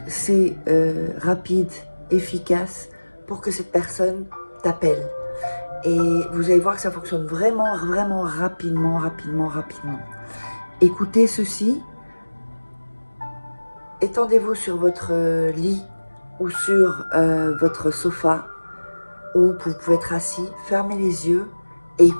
c'est rapide, efficace pour que cette personne t'appelle. Et vous allez voir que ça fonctionne vraiment, vraiment rapidement, rapidement, rapidement. Écoutez ceci. Étendez-vous sur votre lit ou sur votre sofa, ou vous pouvez être assis. Fermez les yeux et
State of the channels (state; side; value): inverted; both; correlation -1.00